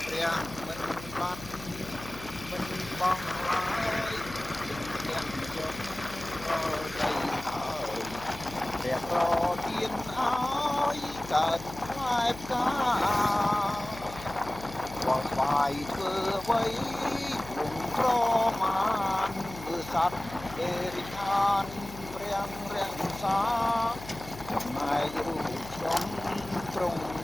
ព្រះមិនបាត់មិនបងឡើយទាំងជុំក៏ដីហើយព្រះប្រទានឲ្យកើតផ្លែផ្កាបងស្វាយធ្វើអ្វីវងក្រមានមើលសត្វអេរិខានព្រះរាំងសាចំណែករូបខ្ញុំទ្រង់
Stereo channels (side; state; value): left; noise; hum, 15 dB below the sound